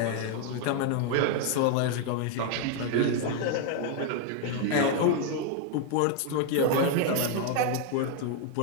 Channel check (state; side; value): different; both; correlation 0.00